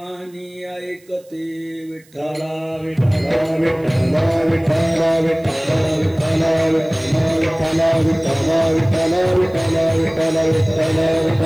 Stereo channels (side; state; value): right; noise; hiss, 30 dB below the sound